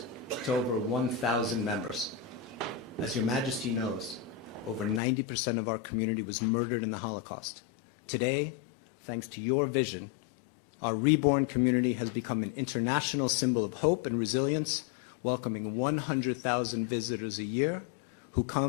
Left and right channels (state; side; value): drops out; right; at 5.0 s